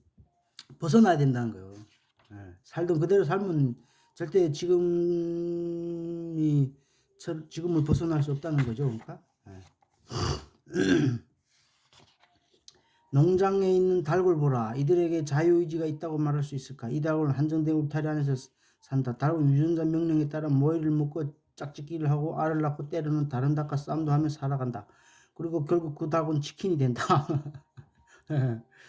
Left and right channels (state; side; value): identical; both; correlation 1.00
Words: 벗어나야 된다는 거예요. 살던 그대로 살면 절대 지금을 벗어날 수 없다는 거죠. 그러니까 농장에 있는 닭을 보라. 이들에게 자유의지가 있다고 말할 수 있을까? 이 닭은 한정된 울타리 안에서 산다. 닭은 유전자 명령에 따라 모이를 먹고 짝짓기를 하고 알을 낳고 때로는 다른 닭과 싸움도 하며 살아간다. 그리고 결국 그 닭은 치킨이 된다.